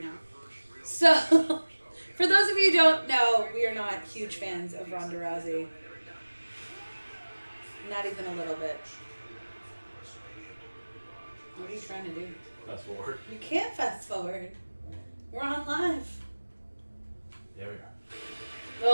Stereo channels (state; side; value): inverted; both; correlation -1.00